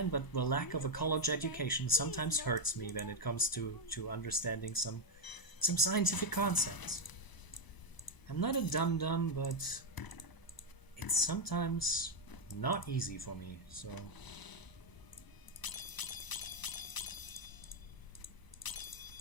but the lack of a college education sometimes hurts me when it comes to understanding some scientific concepts. I'm not a dum-dum, but it's sometimes not easy for me, so...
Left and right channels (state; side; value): late; right; 1.0 ms